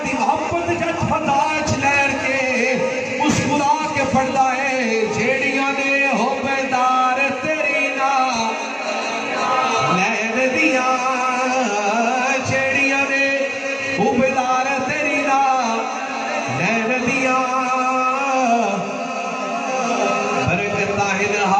دی محبت جت فتاج لہر کے مسکرا کے پڑھدا ہے جیڑیاں نے حبدار تیری نال لہر دیاں جیڑیاں نے حبدار تیری نال لہر دیاں برکتاں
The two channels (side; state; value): both; identical; correlation 1.00